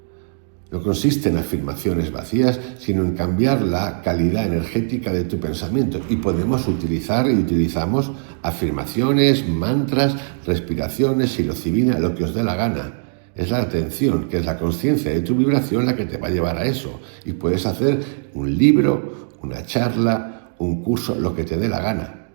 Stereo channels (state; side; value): silent; left; digital silence